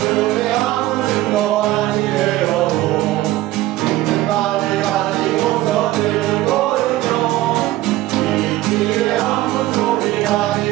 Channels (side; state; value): left; quieter; 16.3 dB